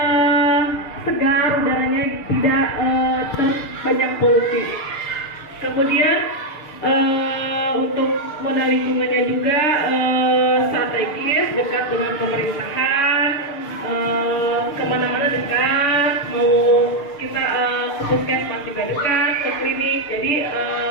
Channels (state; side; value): late; right; 6.7 ms